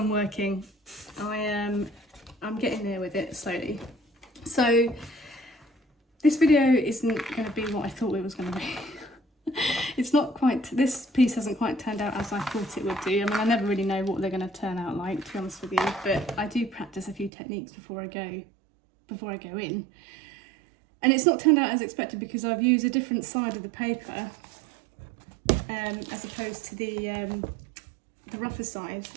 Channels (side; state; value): left; drops out; at 17.3 s